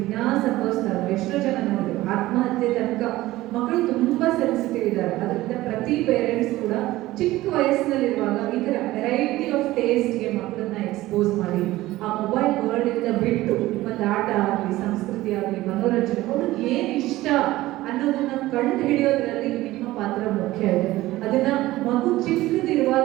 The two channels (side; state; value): left; quieter; 17.1 dB